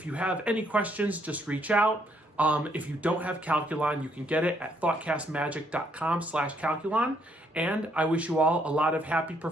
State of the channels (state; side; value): normal; both; correlation 0.71